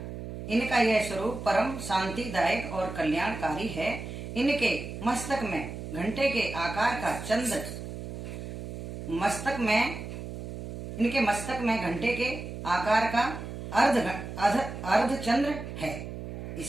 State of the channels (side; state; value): right; noise; hum, 8 dB below the sound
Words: यह स्वरूप परम शांतिदायक और कल्याणकारी है। इनके मस्तक में घंटे के आकार का चंद्र इनके मस्तक में घंटे के आकार का अर्ध चंद्र है।